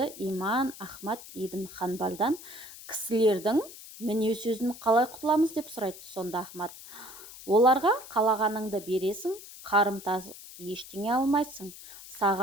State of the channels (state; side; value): noise; left; hiss, 16 dB below the sound